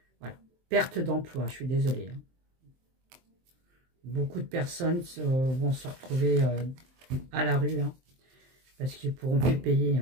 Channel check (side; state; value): left; late; 23 ms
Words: Voilà. Perte d'emploi, je suis désolée. Hein. Beaucoup de personnes vont se retrouver à la rue, hein, parce qu'ils ne pourront plus payer.